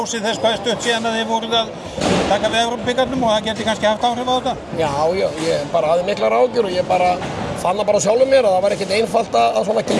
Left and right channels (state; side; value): identical; both; correlation 1.00